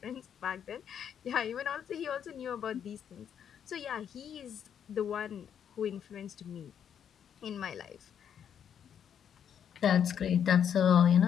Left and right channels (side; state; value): right; quieter; 8.6 dB